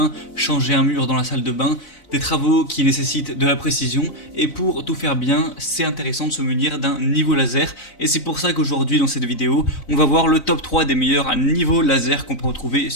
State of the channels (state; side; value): late; right; 4.0 ms